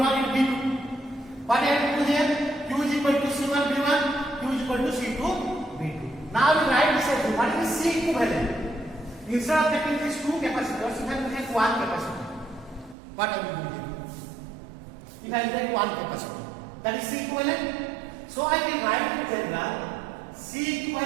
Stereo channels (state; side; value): drops out; left; at 13.0 s